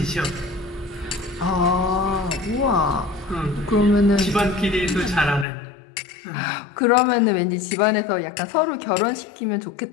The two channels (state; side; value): drops out; right; at 5.5 s